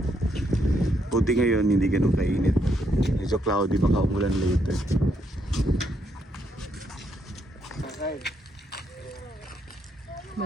Buti ngayon hindi ganun kainit. Medyo cloudy, baka umulan later.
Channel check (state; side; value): normal; both; correlation 0.76